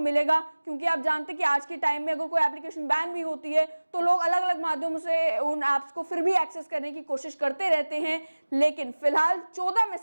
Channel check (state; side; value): inverted; both; correlation -1.00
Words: क्योंकि आप जानते हैं कि आज के टाइम में अगर कोई एप्लीकेशन बैन भी होती है तो लोग अलग अलग माध्यमों से उन ऐप्स को फिर भी एक्सेस करने की कोशिश करते रहते हैं। लेकिन फिलहाल 14